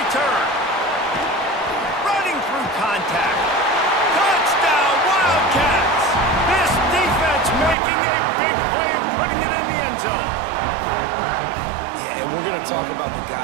return. Running through contact. Touchdown, Wildcats. This defense making a big play and putting it in the end zone. Yeah, and we're going to talk about the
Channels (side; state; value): left; drops out; at 7.8 s